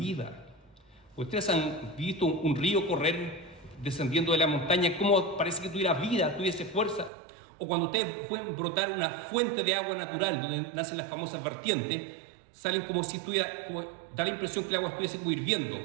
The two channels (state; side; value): drops out; left; at 7.1 s